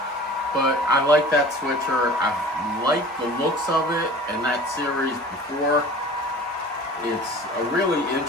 But I like that switcher. I like the looks of it, and that series before. It's a really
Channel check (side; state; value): both; normal; correlation 0.43